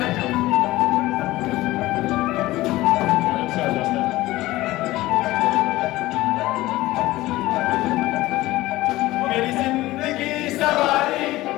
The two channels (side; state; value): right; quieter; 17.8 dB